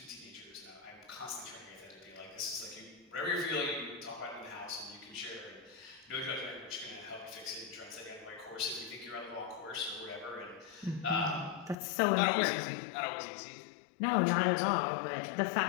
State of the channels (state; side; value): drops out; right; at 11.8 s